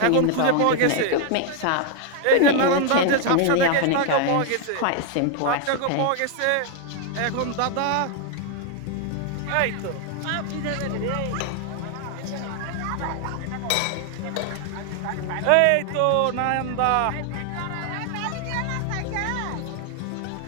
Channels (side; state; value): both; different; correlation 0.00